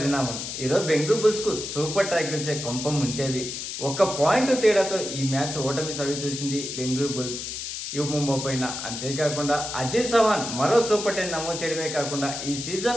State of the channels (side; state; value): left; noise; hiss, 6 dB below the sound